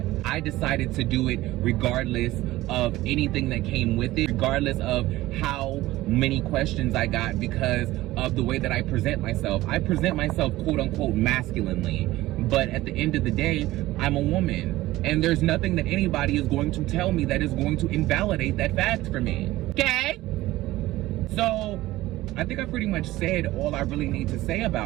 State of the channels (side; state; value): left; quieter; 17.1 dB